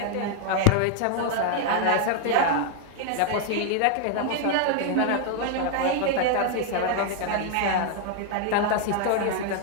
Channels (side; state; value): both; different; correlation 0.00